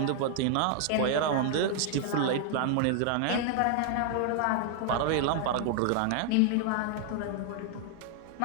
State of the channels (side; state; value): both; different; correlation 0.00